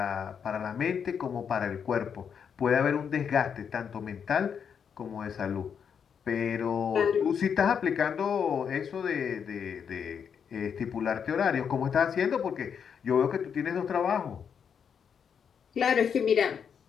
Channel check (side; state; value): right; quieter; 7.2 dB